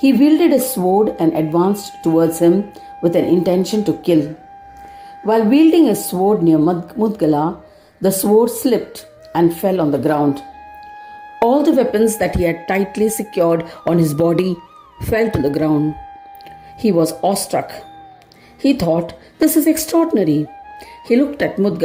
wielded a sword and advanced towards him with an intention to kill. While wielding a sword near Mudgala, the sword slipped and fell on the ground. All the weapons that he had tightly secured on his body fell to the ground. He was awestruck. He thought, "This is extraordinary." He looked at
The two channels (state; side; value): identical; both; correlation 1.00